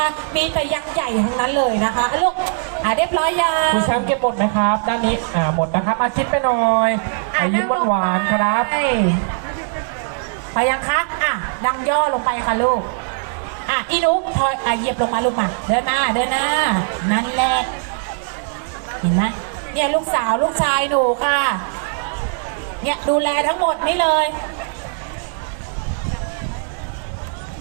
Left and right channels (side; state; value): left; silent; 66 dB below the other